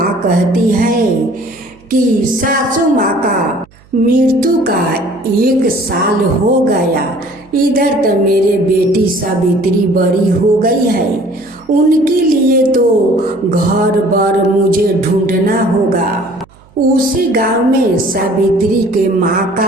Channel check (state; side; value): noise; right; hum, 28 dB below the sound